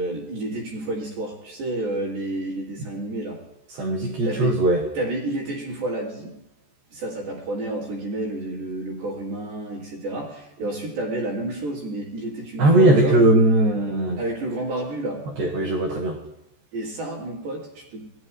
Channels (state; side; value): late; left; 14 ms